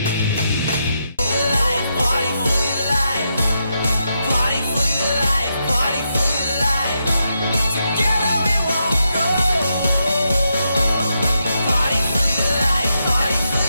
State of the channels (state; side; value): inverted; both; correlation -0.82